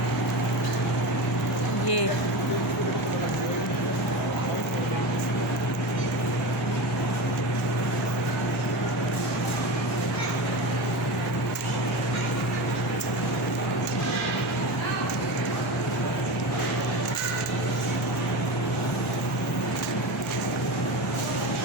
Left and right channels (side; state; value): both; normal; correlation 0.25